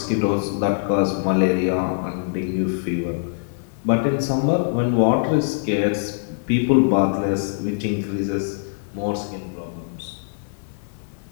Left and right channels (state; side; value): silent; right; 64 dB below the other